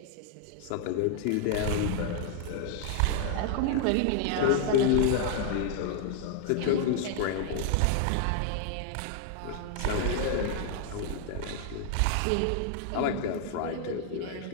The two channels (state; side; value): different; both; correlation 0.00